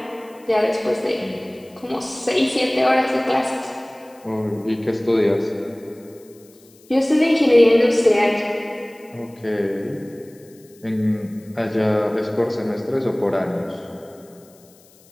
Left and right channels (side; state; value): left; noise; hiss, 28 dB below the sound